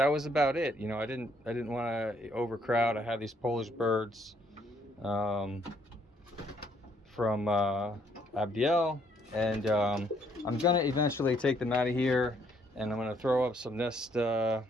was about it. You know, I didn't want to overcrowd. I have these Polish birds from Abdiel. And I'm gonna eventually take them out of here, and I'm gonna throw up some nest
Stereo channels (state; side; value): normal; both; correlation 0.68